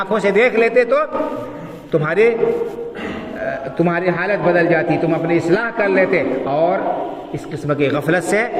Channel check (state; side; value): identical; both; correlation 1.00